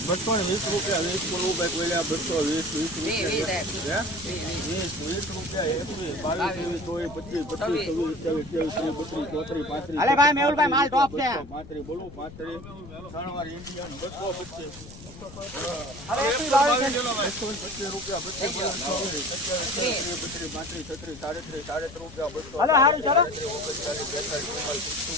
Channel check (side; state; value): left; noise; rumble, 16 dB below the sound